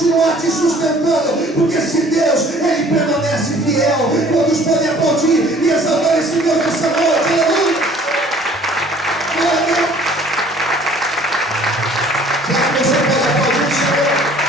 te sustentando, porque se Deus, ele permanece fiel. Quantos podem aplaudir e exaltar esse Deus nessa noite? Aleluia! Glória a Deus! Será que você pode aplaudir o Senhor?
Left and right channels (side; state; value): both; normal; correlation 0.53